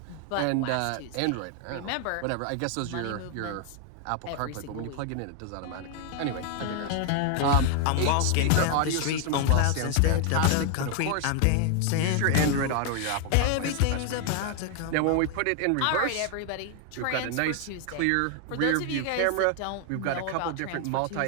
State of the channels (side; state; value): both; different; correlation 0.00